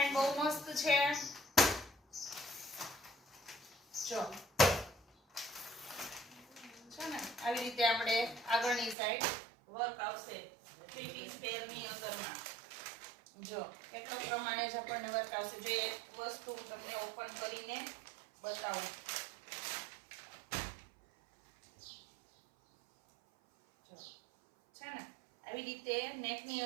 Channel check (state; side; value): drops out; left; at 9.0 s